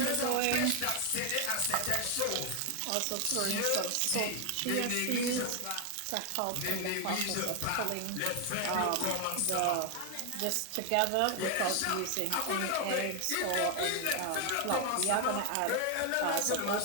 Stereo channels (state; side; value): different; both; correlation 0.00